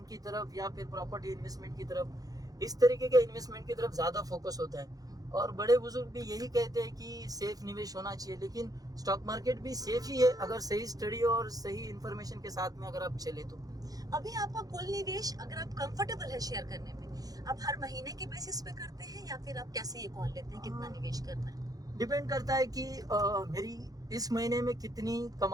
की तरफ या फिर प्रॉपर्टी इन्वेस्टमेंट की तरफ, इस तरीके के इन्वेस्टमेंट की तरफ ज्यादा फोकस होता है। और बड़े बुजुर्ग भी यही कहते हैं कि सेफ निवेश होना चाहिए, लेकिन स्टॉक मार्केट भी सेफ ही है अगर सही स्टडी और सही इंफॉर्मेशन के साथ में अगर आप चले तो। अभी आपका कुल निवेश, अगर आप कंफर्टेबल है शेयर करने में, आप हर महीने के बेसिस पे करते हैं या फिर आप कैसे ये कॉल लेते हैं कितना निवेश करना है? डिपेंड करता है कि मेरी इस महीने में कितनी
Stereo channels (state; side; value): late; left; 0.18 ms